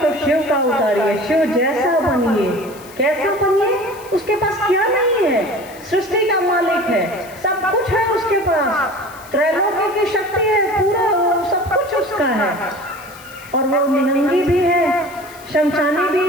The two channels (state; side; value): noise; left; hiss, 21 dB below the sound